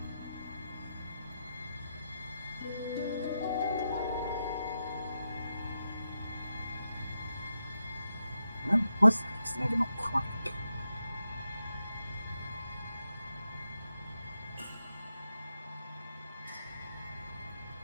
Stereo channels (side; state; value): both; inverted; correlation -0.86